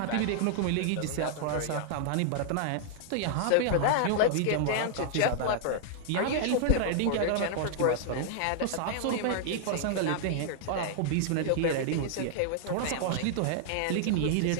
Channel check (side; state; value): both; different; correlation -0.01